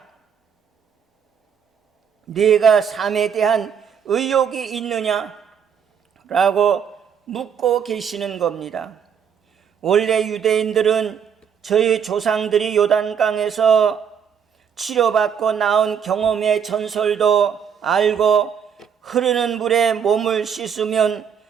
내가 삶에 대한 의욕이 있느냐? 라고 묻고 계시는 겁니다. 원래 유대인들은 저희 조상들이 요단강에서 치료받고 나온 경험의 전설도 알고 흐르는 물에 몸을 씻으면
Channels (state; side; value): quieter; left; 7.6 dB